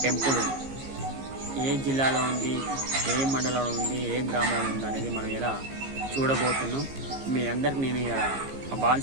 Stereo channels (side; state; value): left; late; 15 ms